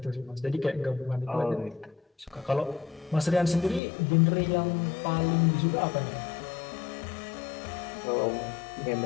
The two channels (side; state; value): right; drops out; at 3.8 s